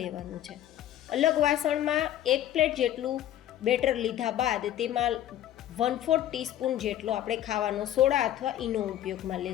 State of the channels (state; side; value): quieter; right; 12.0 dB